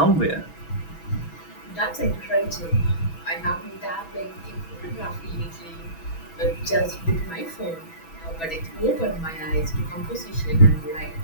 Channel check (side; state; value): right; late; 6.1 ms